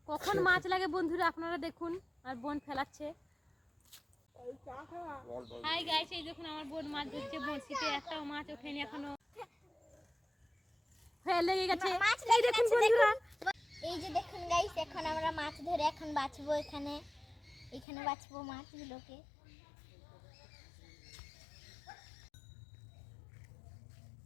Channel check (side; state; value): right; drops out; at 17.9 s